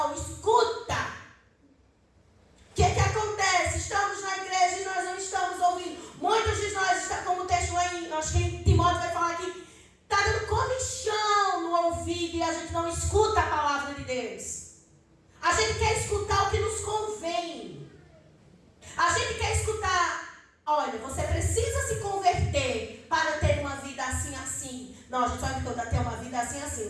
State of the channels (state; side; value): identical; both; correlation 1.00